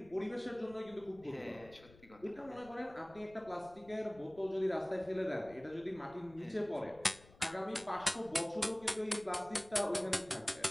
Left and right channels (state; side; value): noise; left; rumble, 23 dB below the sound